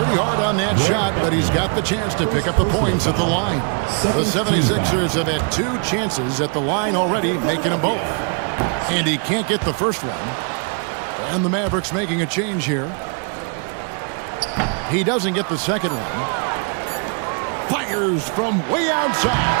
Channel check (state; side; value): quieter; left; 39.0 dB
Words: hard on that shot, but he's got the chance to pick up the points at the line. The 76ers have had 2 chances at the line already, making them both. And he can't get the first one. And the Mavericks making a change here. He doesn't get the second one. Fires from way